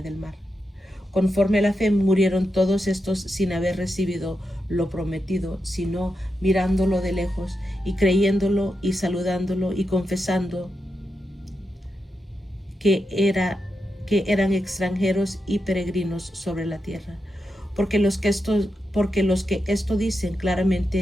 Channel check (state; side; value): normal; both; correlation 0.86